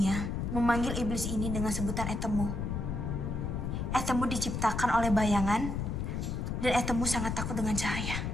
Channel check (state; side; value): noise; left; rumble, 2 dB below the sound